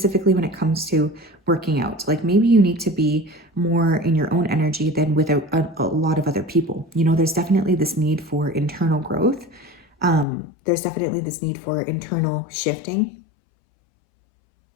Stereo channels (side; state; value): right; drops out; at 10.2 s